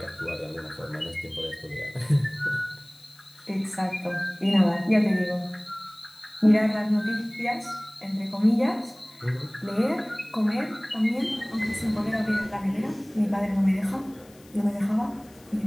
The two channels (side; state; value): left; noise; hiss, 26 dB below the sound